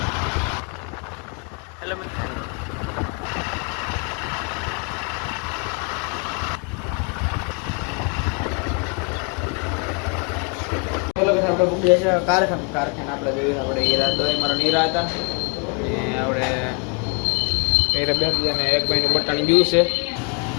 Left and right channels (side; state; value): right; quieter; 36.2 dB